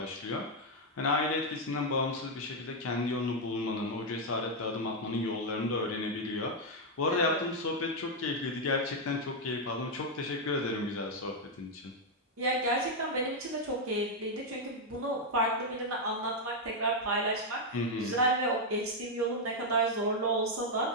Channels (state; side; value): normal; both; correlation 0.00